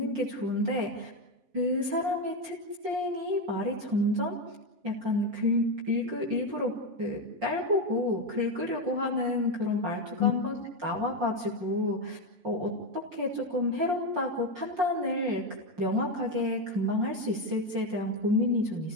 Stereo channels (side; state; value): left; late; 5.6 ms